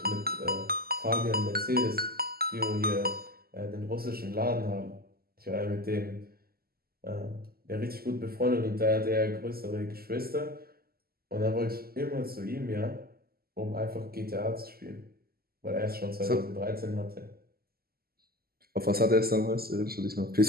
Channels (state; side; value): late; left; 0.44 ms